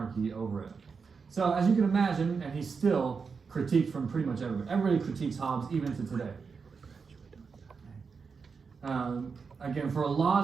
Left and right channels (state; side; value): quieter; left; 5.3 dB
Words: over it. So as you can imagine, and he's still critiqued from pretty much everybody. Everybody critiques Hobbes even to today. Again, for a